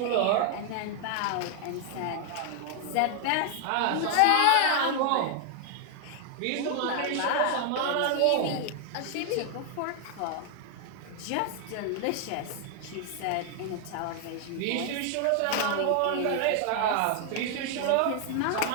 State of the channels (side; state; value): both; different; correlation 0.00